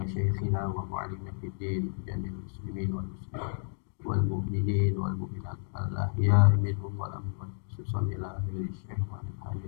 wa mu'allimina fid din jamil muslimin wal muslimat wal mu'minin wal mu'minat al ahya'i minhum wal amwat khususan ila ahli syekh wa ahli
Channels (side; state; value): right; silent; digital silence